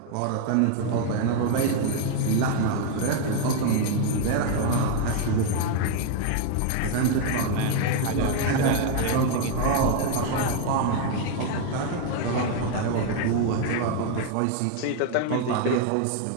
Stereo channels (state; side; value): different; both; correlation 0.00